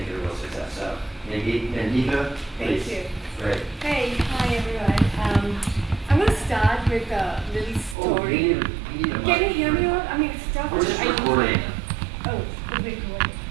it a real success. So, Nandita, please. Thank you. Great. Hey, hi everyone. I'm going to start with a little story. Can you hear me all? I mean, it's tough. We're just recording. Oh, it's recording.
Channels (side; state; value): left; drops out; at 8.0 s